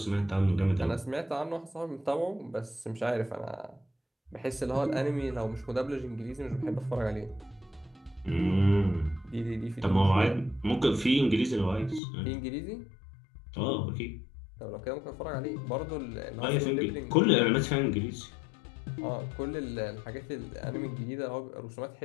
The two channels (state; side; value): drops out; right; at 12.0 s